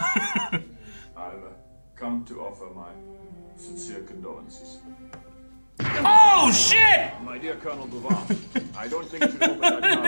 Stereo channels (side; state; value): both; inverted; correlation -1.00